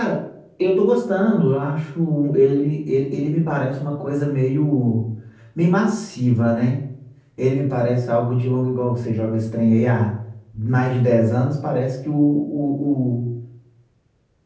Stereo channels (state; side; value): identical; both; correlation 1.00